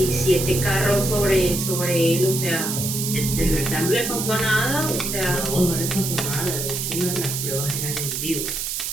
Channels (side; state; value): right; noise; hiss, 3 dB below the sound